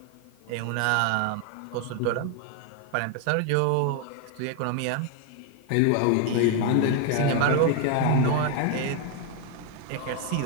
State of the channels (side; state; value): both; different; correlation 0.01